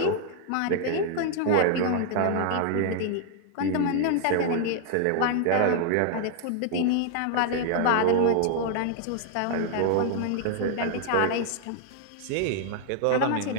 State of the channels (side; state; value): both; different; correlation 0.00